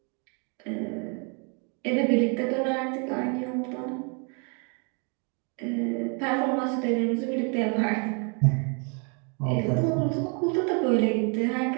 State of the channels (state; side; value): quieter; left; 37.0 dB